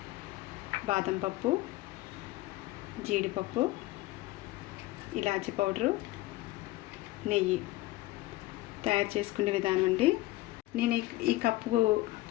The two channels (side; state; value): right; quieter; 18.3 dB